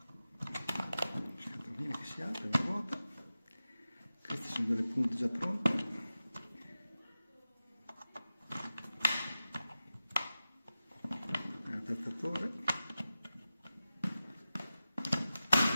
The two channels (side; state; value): both; inverted; correlation -0.94